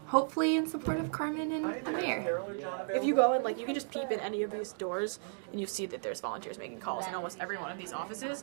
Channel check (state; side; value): silent; left; digital silence